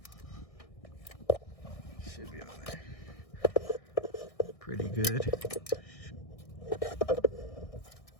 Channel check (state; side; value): late; right; 1.6 ms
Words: Should be on there. Pretty good.